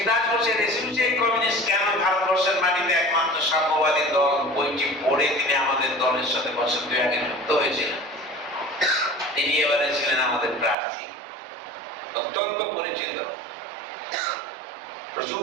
ঘোষের এসইউসি কমিউনিস্ট কেন ভারতবর্ষের মাটিতে একমাত্র সাম্যবাদী দল, বইটি পড়ে তিনি আমাদের দলের সাথে বছর 2 আগে যুক্ত হয়েছিলেন। তিনি এবারে ছিলেন আমাদের প্রার্থী, অত্যন্ত পরিচিত,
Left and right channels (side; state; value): left; drops out; at 10.8 s